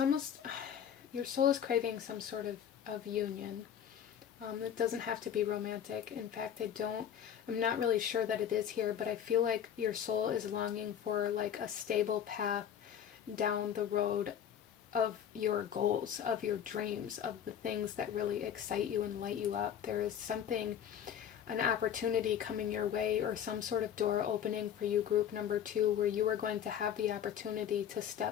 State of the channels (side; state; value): right; quieter; 9.1 dB